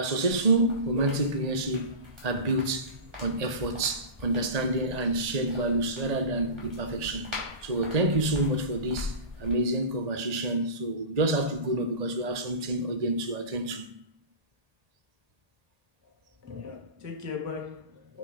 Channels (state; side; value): late; left; 1.8 ms